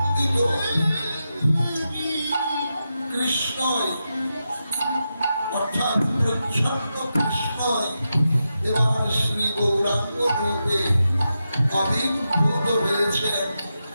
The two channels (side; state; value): both; inverted; correlation -0.88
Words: কৃষ্ণই অর্থাৎ প্রচ্ছন্ন কৃষ্ণই এবার শ্রী গৌরাঙ্গ রূপে আবির্ভূত হয়েছেন